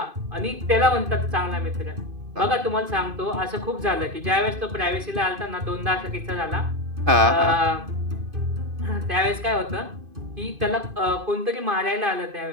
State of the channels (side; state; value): left; late; 2.5 ms